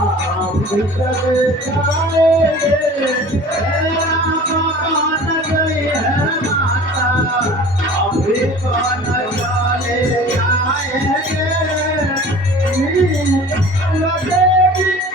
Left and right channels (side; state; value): both; normal; correlation 0.43